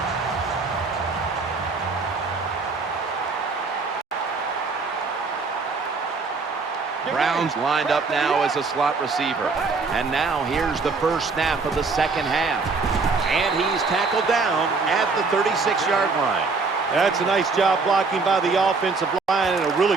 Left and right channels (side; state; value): left; quieter; 4.3 dB